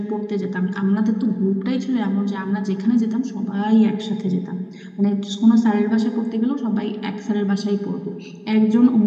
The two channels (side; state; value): both; identical; correlation 1.00